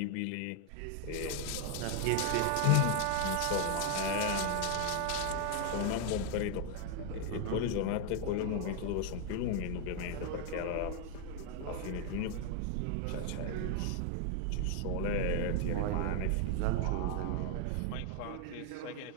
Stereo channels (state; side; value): different; both; correlation 0.00